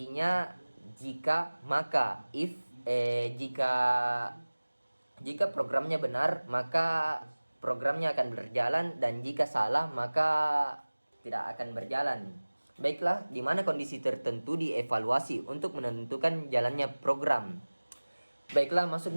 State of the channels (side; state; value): both; inverted; correlation -1.00